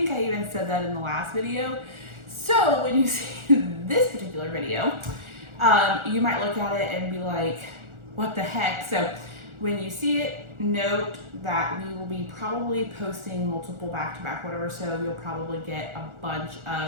I even said that in the last video. So when you see this particular video, you might look at it and be like, what the heck? So when you see it, note that we will be probably posting multiple back to back whatever, so you'll probably get a bunch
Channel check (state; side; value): late; left; 1.4 ms